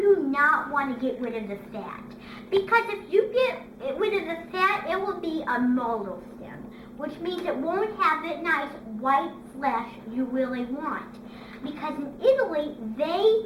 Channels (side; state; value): both; identical; correlation 1.00